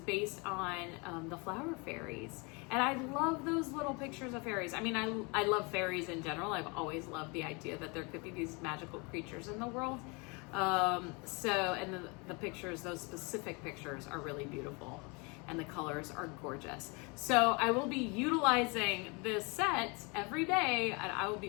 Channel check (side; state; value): right; quieter; 29.9 dB